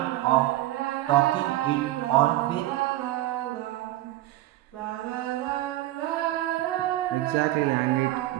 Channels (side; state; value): left; quieter; 16.1 dB